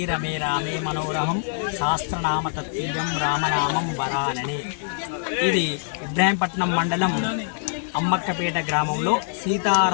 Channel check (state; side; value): silent; right; 59 dB below the other